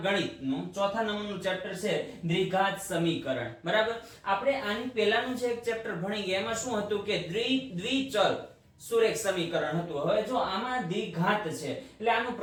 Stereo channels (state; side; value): identical; both; correlation 1.00